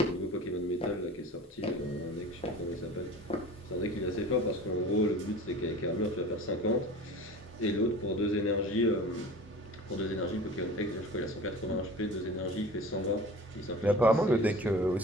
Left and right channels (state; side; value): normal; both; correlation 0.39